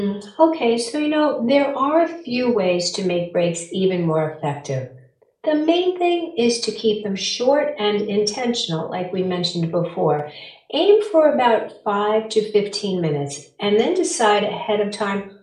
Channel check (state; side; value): identical; both; correlation 1.00